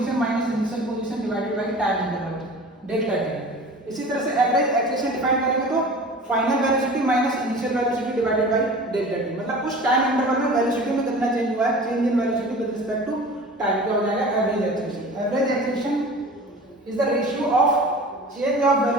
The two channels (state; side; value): normal; both; correlation 0.40